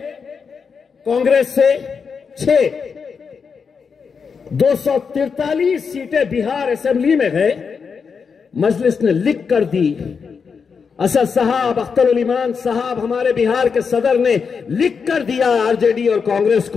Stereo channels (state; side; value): quieter; right; 5.8 dB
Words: कांग्रेस से, 6, 243 सीटें बिहार असेंबली में गए। मजलिस ने लिख कर दी, असद साहब, अख्तर उल ईमान साहब, हमारे बिहार के सदर ने लिख कर दिया आरजेडी और कांग्रेस